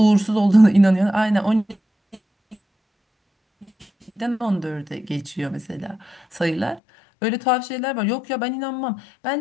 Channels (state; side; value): drops out; right; at 6.8 s